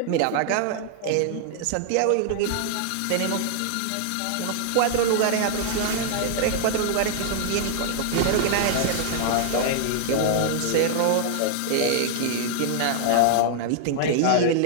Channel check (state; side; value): different; both; correlation 0.00